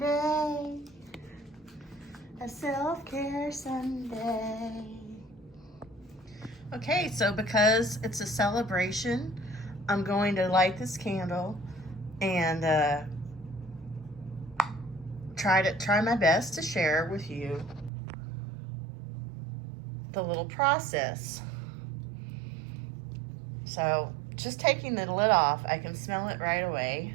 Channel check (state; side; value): drops out; left; at 17.9 s